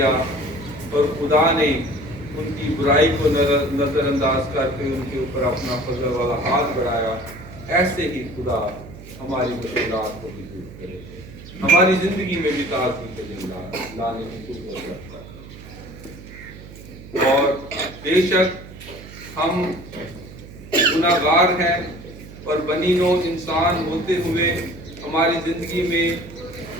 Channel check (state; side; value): noise; right; hum, 16 dB below the sound